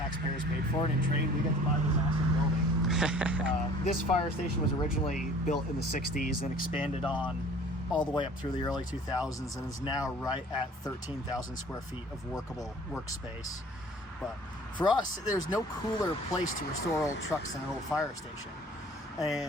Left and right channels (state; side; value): normal; both; correlation 0.49